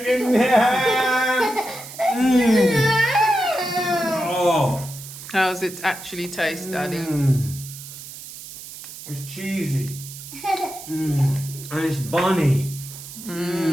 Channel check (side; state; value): right; noise; hiss, 13 dB below the sound